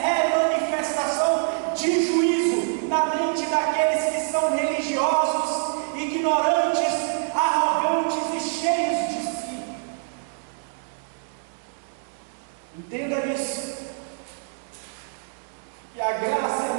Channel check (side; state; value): left; silent; digital silence